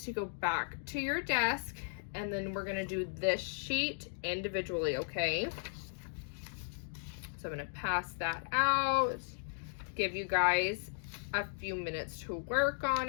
to go back to your desk, and then we're gonna do this sheet individually, okay? So I'm gonna pass that out, give you guys a few minutes to work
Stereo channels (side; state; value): right; silent; digital silence